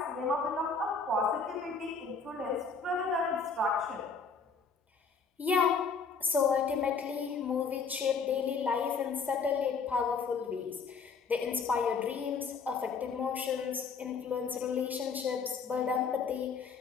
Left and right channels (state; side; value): quieter; right; 5.1 dB